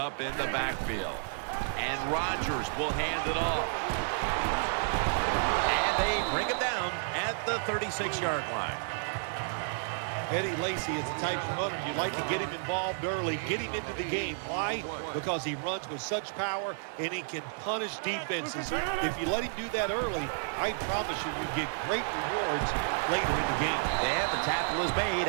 in the backfield. And Rodgers will hand it off. And they bring him down at the 36-yard line. Eddie Lacy is the type of runner you like to get him involved early, get him into the game. Why? Because he runs with such power and he can punish defenses. If you let him do that early, I promise you get great rewards later in the game. And the tackle is made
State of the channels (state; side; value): silent; left; digital silence